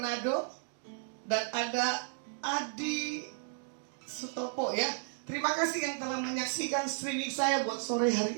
Dan ada Adi Sutopo, ya. Terima kasih yang telah menyaksikan streaming saya buat sore hari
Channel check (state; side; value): silent; left; digital silence